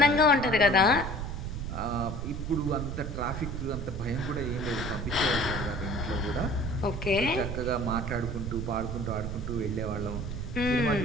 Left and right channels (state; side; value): noise; right; rumble, 5 dB below the sound